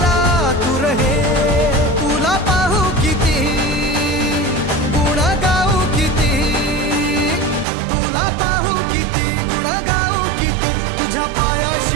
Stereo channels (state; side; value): drops out; left; at 7.7 s